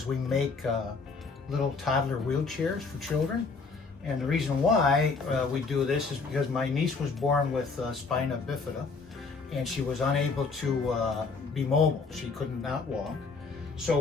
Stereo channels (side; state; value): right; quieter; 4.4 dB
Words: we make little toddler wheelchairs for children. And the reason why we do this is because my niece was born with spina bifida, and she was unable to be mobile. She could not walk. So